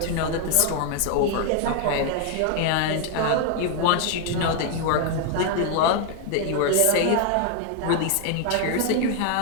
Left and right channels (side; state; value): both; different; correlation 0.00